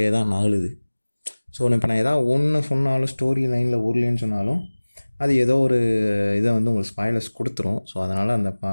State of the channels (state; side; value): inverted; both; correlation -1.00